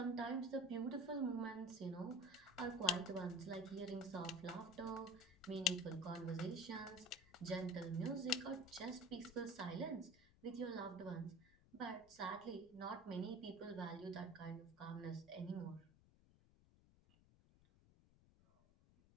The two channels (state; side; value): noise; left; rumble, 26 dB below the sound